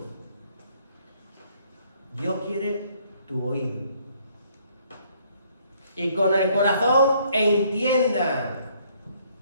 Dios quiere tu oído. Y con el corazón entiendan.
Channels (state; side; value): inverted; both; correlation -0.65